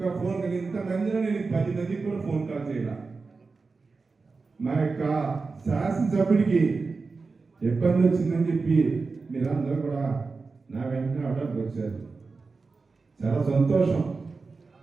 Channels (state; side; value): quieter; left; 4.2 dB